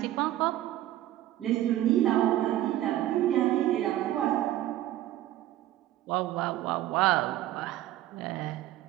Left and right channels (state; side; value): quieter; left; 13.9 dB